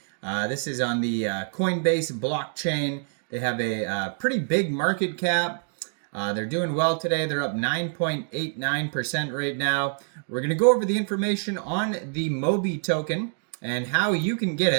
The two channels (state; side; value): silent; left; digital silence